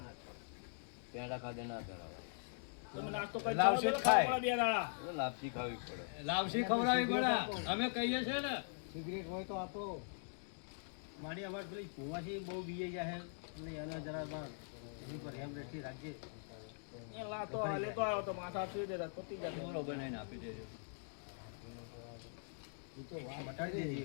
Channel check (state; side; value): silent; right; digital silence